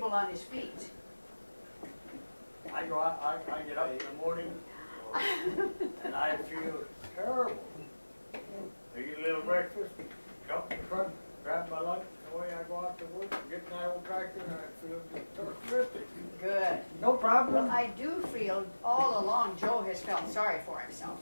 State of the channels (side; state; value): both; inverted; correlation -1.00